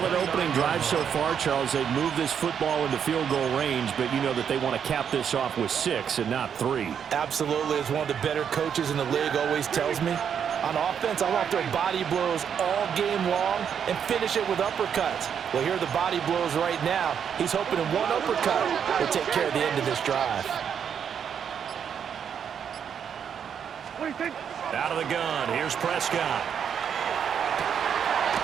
opening drive so far, Charles. They've moved this football into field goal range, but you know that they want to cap this off with 6 and not 3. Absolutely. As one of the better coaches in the league always tells me, on offense, I want to throw body blows all game long and finish it with uppercuts. Well, here are the body blows right now. He's hoping in one uppercut will take care of the end of this drive. Out of the gun, here's Prescott.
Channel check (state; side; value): quieter; left; 7.9 dB